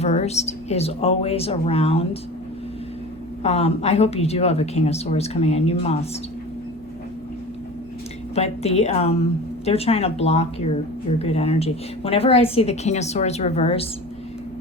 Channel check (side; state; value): both; normal; correlation 0.35